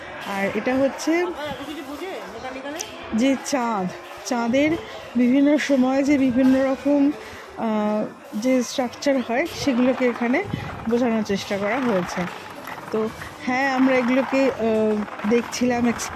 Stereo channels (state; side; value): identical; both; correlation 1.00